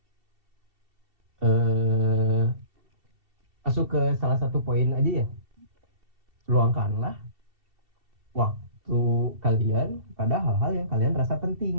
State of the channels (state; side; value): late; left; 2.7 ms